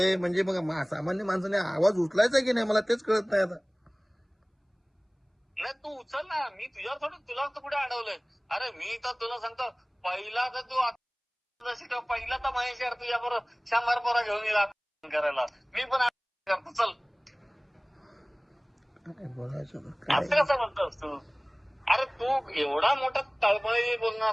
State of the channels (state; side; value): identical; both; correlation 1.00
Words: म्हणजे मग सामान्य माणसाने आवाज उचलायचा की नाही मला तेच कळत नाही आता. नाही तू उचल ना. मी तुझ्यावर थोडं, तुला तर कुठे अडवलंय. अरे मी तर तुला सांगतो, पहिला तर तू पहिला तर महेश यार तुझ्या बरोबर 100 पोरा घेऊन येईल करायला. मी पण करतो. चल असं कसं म्हणतोस तू? अरे तू एवढा मोठा तळमळी बोलणार